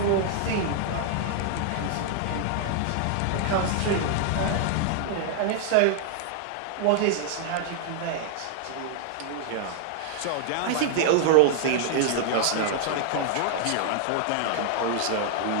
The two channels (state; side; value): different; both; correlation -0.01